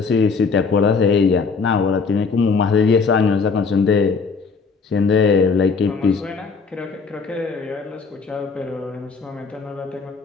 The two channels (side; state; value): right; quieter; 4.9 dB